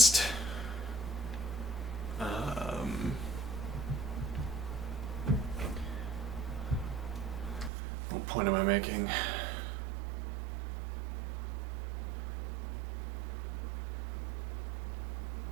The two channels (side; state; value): left; drops out; at 7.7 s